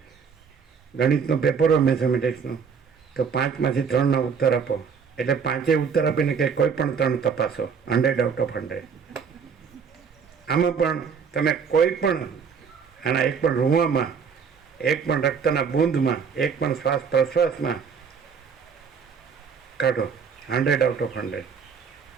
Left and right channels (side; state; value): left; quieter; 6.3 dB